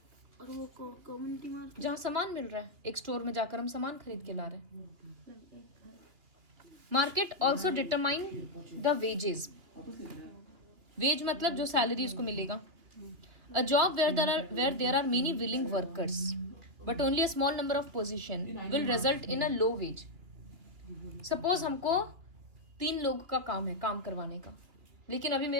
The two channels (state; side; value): late; left; 2.8 ms